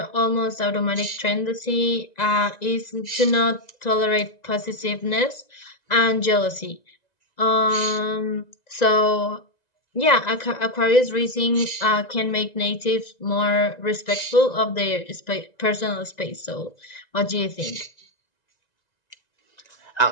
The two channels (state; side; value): late; right; 1.9 ms